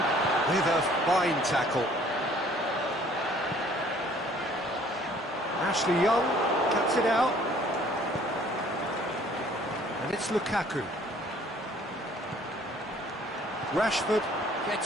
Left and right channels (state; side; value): normal; both; correlation 0.56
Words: with a fine tackle. Ashley Young cuts it out. And it's Lukaku. Rashford